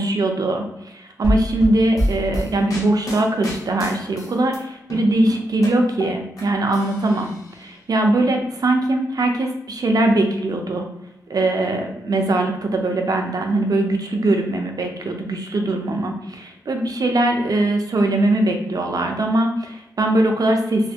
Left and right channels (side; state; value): both; normal; correlation 0.81